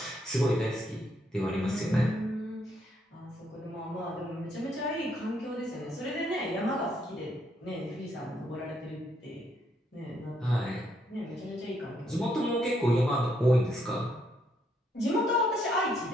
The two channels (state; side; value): normal; both; correlation 0.73